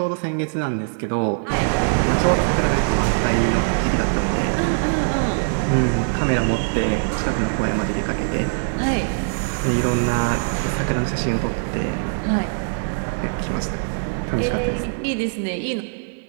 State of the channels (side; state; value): left; silent; digital silence